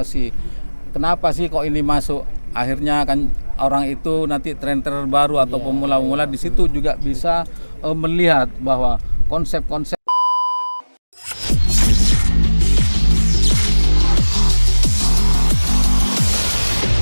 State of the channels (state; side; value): inverted; both; correlation -1.00